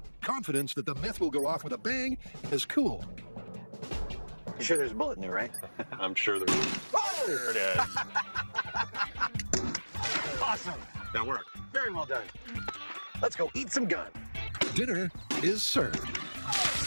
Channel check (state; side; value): inverted; both; correlation -1.00